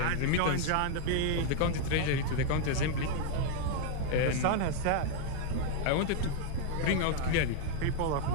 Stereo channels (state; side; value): different; both; correlation 0.00